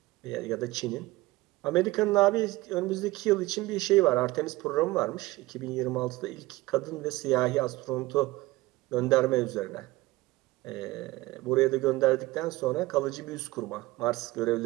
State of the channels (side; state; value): left; quieter; 19.6 dB